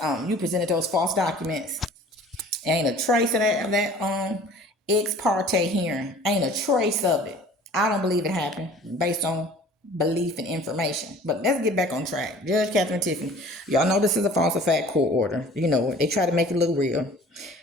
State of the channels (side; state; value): both; normal; correlation 0.48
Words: you presented those false documents. Ain't a trace of that ex parte hearing. Ain't a trace of it. I don't believe it happened based on belief and information. But let's get back on track. Judge Katherine Tiffany. Y'all know this is a falsified court order. You know it. They try to make it look real.